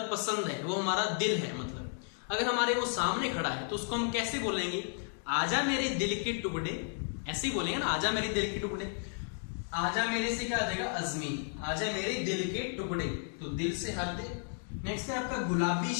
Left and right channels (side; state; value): right; silent; 56 dB below the other